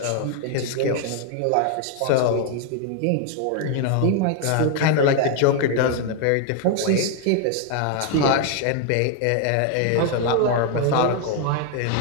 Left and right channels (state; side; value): different; both; correlation 0.00